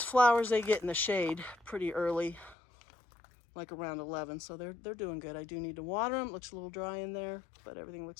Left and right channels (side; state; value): right; drops out; at 2.6 s